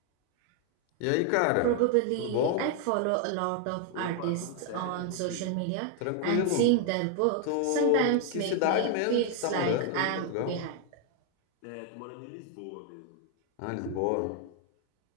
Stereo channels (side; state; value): both; different; correlation 0.00